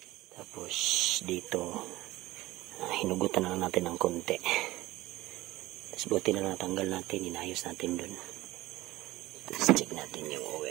Tapos dito, hinugutan na natin ng konti. Tapos buti na natanggal natin, inayos natin dun. Tapos check natin yung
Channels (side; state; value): left; quieter; 17.9 dB